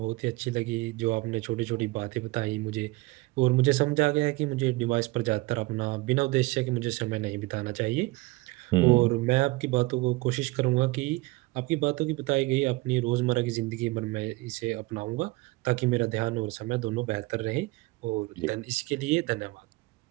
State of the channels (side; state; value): left; quieter; 21.7 dB